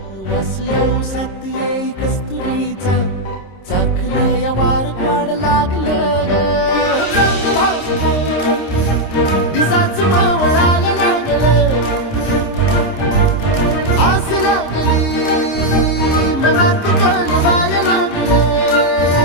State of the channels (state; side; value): late; right; 26 ms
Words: वास येऊ साथ येई कस्तुरीचा चाखलं या वार वाड लागलं ग चांद भासतं दिसाच मावळायला लागलं आस लागली मनात कळवायला लागलं